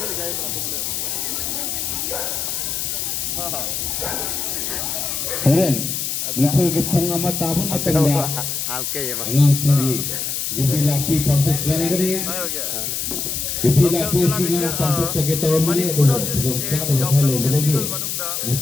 ꯂꯩꯀꯥꯏ ꯑꯇꯣꯞꯄ ꯂꯩ ꯍꯣꯔꯦꯟ ꯅꯨꯡꯊꯤꯜꯒꯤ ꯄꯨꯡ 1 ꯇꯥꯕ ꯃꯇꯝꯗ ꯑꯉꯥꯡꯁꯤꯡꯒꯤ ꯌꯨꯕꯤ ꯂꯥꯛꯄꯤ ꯄꯥꯡꯊꯣꯛꯆꯔꯒꯅꯤ ꯌꯨꯕꯤ ꯂꯥꯛꯄꯤꯁꯤꯡꯅ ꯄꯥꯡꯊꯣꯛꯆꯒꯦ ꯇꯧꯔꯝꯕꯅꯤ ꯑꯗꯨꯒ ꯈꯨꯗꯣꯡꯆꯥꯗꯕ ꯈꯔ ꯂꯩꯕꯗꯒꯤ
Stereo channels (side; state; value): left; noise; hiss, 2 dB below the sound